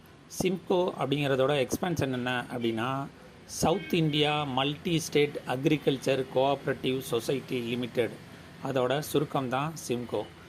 சிம்கோ அப்படிங்கிறதோட எக்ஸ்பென்ஷன் என்ன அப்படின்னா, south India multi state agriculture cooperative society limited, அதோட சுருக்கம் தான் சிம்கோ.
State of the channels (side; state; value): both; identical; correlation 1.00